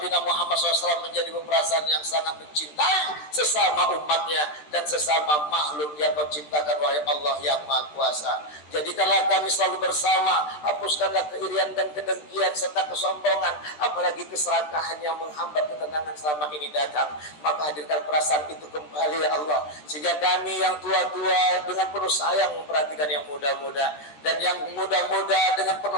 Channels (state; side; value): late; right; 13 ms